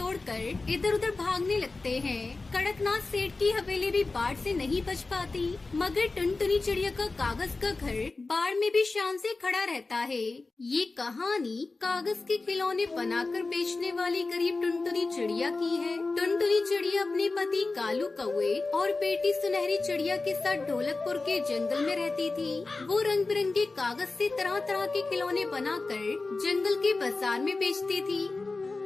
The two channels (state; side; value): quieter; right; 3.6 dB